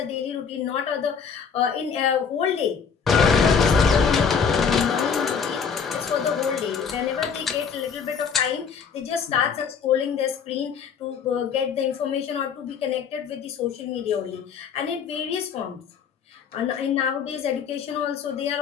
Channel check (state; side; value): quieter; right; 6.5 dB